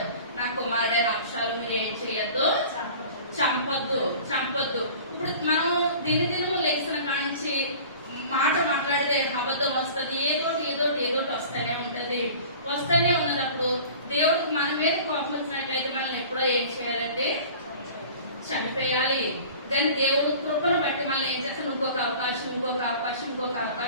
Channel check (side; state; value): both; inverted; correlation -0.43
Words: నా కుమారుడైన అక్షరాలు మీరు ఏం చేయొద్దు, చంపొద్దు. ఇప్పుడు మనం దినదినము లేచిన కానించి మాట మాట్లాడితే అబద్ధం వస్తుంది, ఏదోటి వస్తూనే ఉంటది. వస్తూనే ఉన్నప్పుడు దేవుడికి మన మీద కోపం వచ్చినట్లయితే మనం ఎప్పుడో ఏం చేయాలంటే చంపేయాలి. కానీ దేవుడు కృపను బట్టి మనల్ని ఏం చేస్తాం, ఇంకొక అవకాశం.